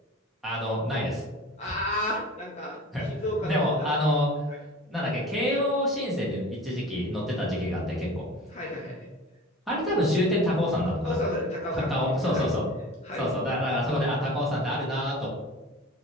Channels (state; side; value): normal; both; correlation 0.39